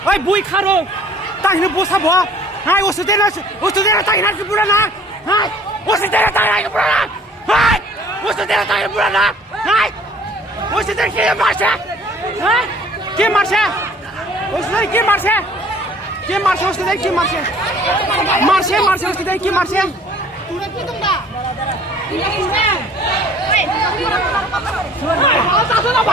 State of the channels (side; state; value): both; normal; correlation 0.53